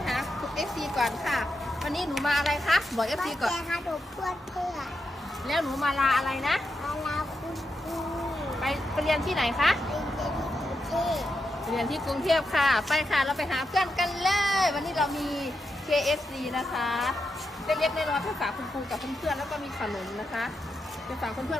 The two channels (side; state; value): both; normal; correlation 0.85